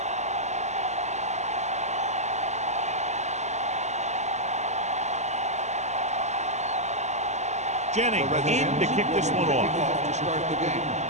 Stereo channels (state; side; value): late; left; 0.33 ms